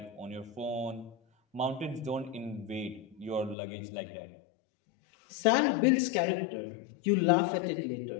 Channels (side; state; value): right; drops out; at 3.6 s